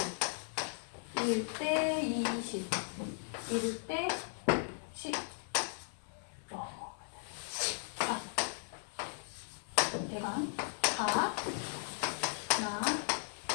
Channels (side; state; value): right; silent; digital silence